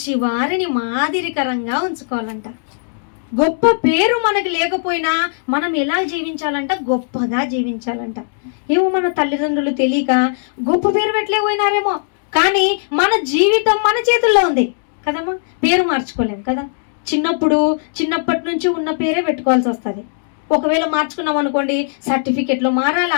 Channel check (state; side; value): silent; right; digital silence